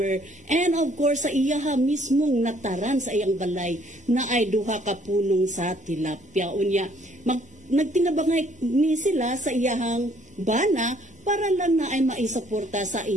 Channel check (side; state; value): both; normal; correlation 0.63